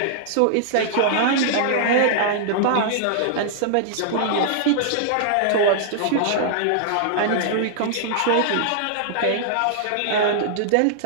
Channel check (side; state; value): both; different; correlation -0.01